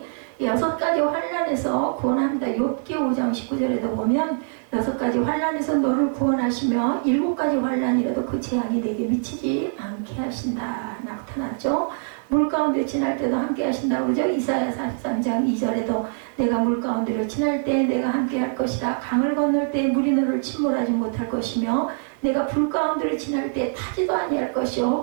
6가지 환난에서 구원합니다. 욥기 5장 19절에도 보면 6가지 환난에서 너를 구원하시며 7가지 환난이라도 그 재앙이 내게 미치지 않게 하신다 나타났죠. 물 가운데 지날 때도 함께 하신다고 그러죠. 이사야 43장 2절에도 내가 물 가운데로 지날 때 내가 함께 할 것이다. 강을 건널 때 물이 너를 침몰하지 못할 것이며 내가 불 가운데로 지날 때 타지도 아니할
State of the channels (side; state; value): left; silent; 63 dB below the other